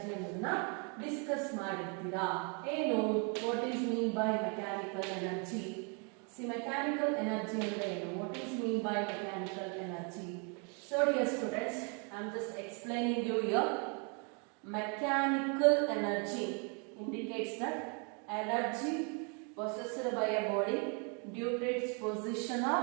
discuss ಮಾಡಿರ್ತೀರಾ. ಏನು, what is mean by mechanical energy? See, mechanical energy ಅಂದ್ರೆ ಏನು, what is mean by mechanical energy? So dear students, I am just explaining you here. Mechanical energy indicates that energy possessed by a body due to its position or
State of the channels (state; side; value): quieter; left; 36.6 dB